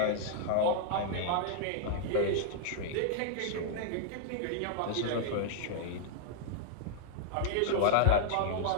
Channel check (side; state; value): both; different; correlation -0.01